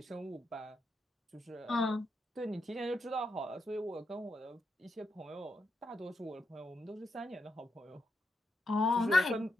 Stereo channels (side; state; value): both; normal; correlation 0.83